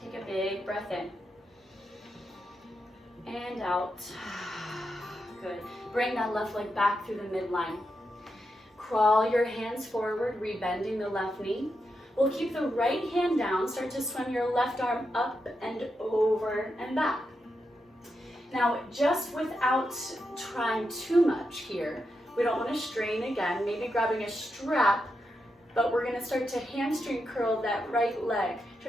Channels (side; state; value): both; normal; correlation 0.85